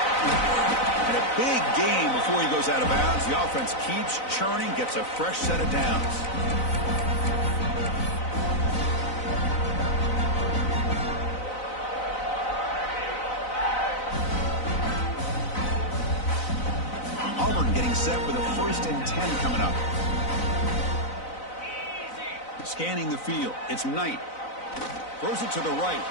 And a big gain before he goes out of bounds. The offense keeps churning, gets a fresh set of downs. getting set for the 1st and 10 coming up. Scanning the field. It's Knight. Throws it to the right.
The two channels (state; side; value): late; right; 4.0 ms